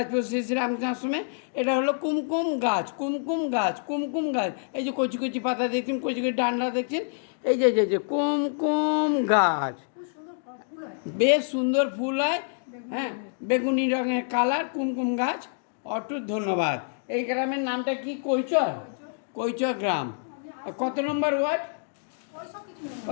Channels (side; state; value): right; silent; digital silence